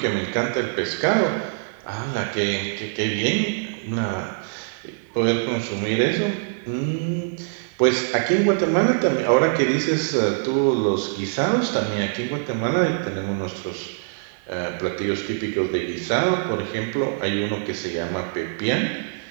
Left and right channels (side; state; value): left; silent; digital silence